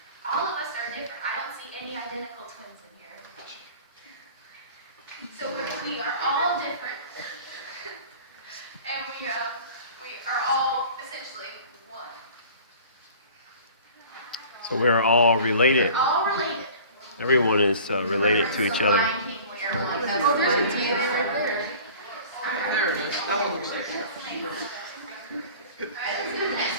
All of us are different. I don't see any identical twins in here. So we are all different, and we are all essentially one. So we are all related. We're all related. Everyone is related to each other. Lion King, we are one. Oh, there's a DNA right there. There it is. That one looks like it. Alright, let's go to the next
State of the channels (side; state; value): both; inverted; correlation -0.44